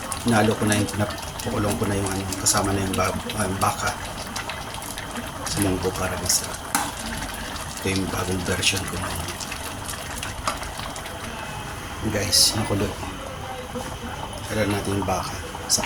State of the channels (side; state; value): both; identical; correlation 1.00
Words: Nalo ko na yung napakulong ko na yung kasama na yung baka sa munggo para masarap. Ito yung bagong version ko na yun. Guys, nakulo. Kailan natin yung baka sa